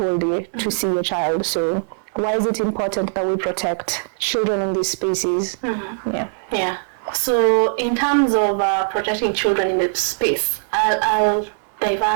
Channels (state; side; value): silent; left; 63 dB below the other